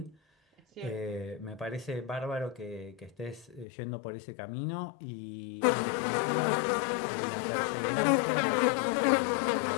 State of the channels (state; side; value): drops out; right; at 3.7 s